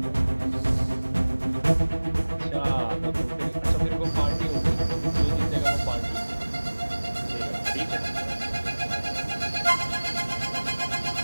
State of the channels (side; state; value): both; inverted; correlation -1.00